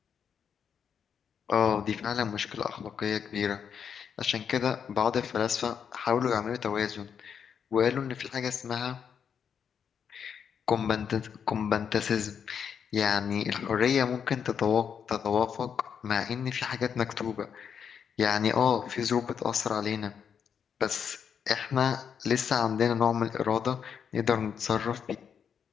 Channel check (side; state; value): right; quieter; 7.4 dB